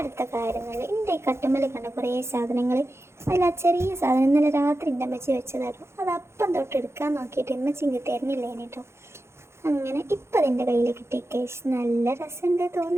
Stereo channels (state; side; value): late; left; 0.13 ms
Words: കാര്യങ്ങൾ, എൻ്റെ ഈ കട്ടുമ്മൽ കണ്ട കുറേ സാധനങ്ങൾ, അതിൽ ആ ചെറിയ സാധനം ഇന്നലെ രാത്രി എൻ്റെ അമ്മച്ചി വെച്ചതായിരുന്നു. അത് അപ്പം തൊട്ട് എടുക്കാൻ നോക്കിയിട്ട് അമ്മച്ചി ഇങ്ങ് തരുന്നില്ല കേട്ടോ. അങ്ങനെ ഇപ്പം അതിൻ്റെ കയ്യിൽ കിട്ടി കേസ്. നല്ല രസമുണ്ട്